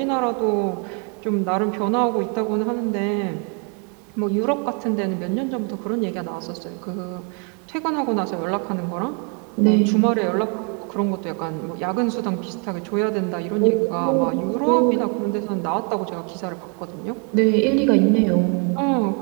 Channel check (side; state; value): left; quieter; 37.1 dB